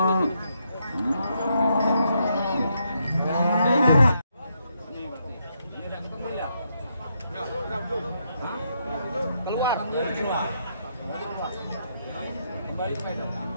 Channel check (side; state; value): both; inverted; correlation -0.78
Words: Keluar. Kembali ke medan.